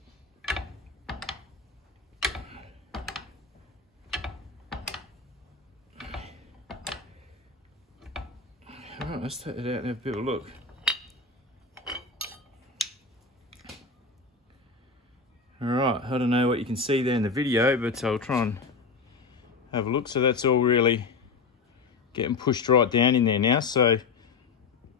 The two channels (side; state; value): right; quieter; 4.5 dB